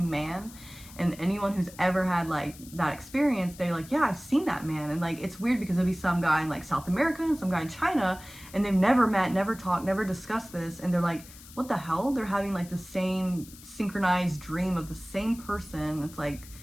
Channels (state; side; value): noise; left; hiss, 19 dB below the sound